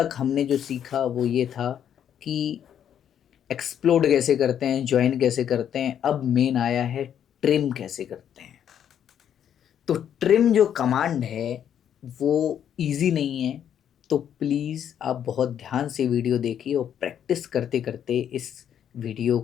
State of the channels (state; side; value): quieter; right; 9.4 dB